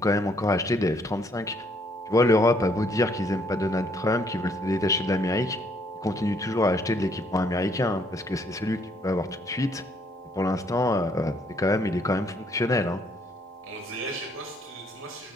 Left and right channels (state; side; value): normal; both; correlation 0.67